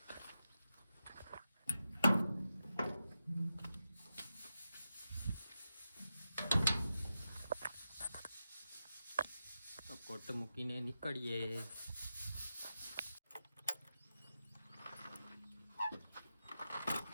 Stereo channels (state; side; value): inverted; both; correlation -0.90